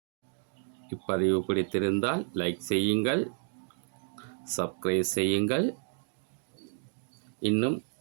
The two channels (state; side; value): silent; left; 57 dB below the other